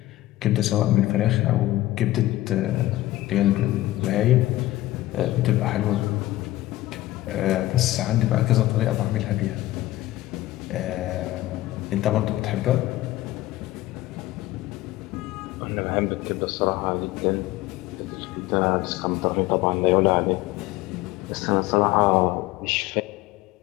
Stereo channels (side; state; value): right; quieter; 16.6 dB